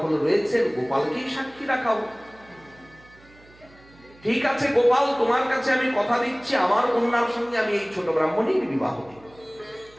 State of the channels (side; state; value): right; noise; hum, 26 dB below the sound